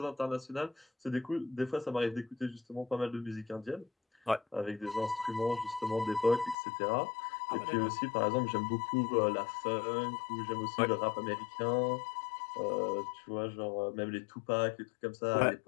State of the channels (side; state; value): right; drops out; at 6.6 s